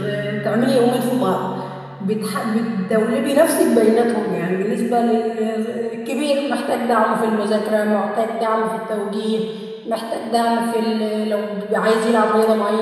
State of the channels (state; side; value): identical; both; correlation 1.00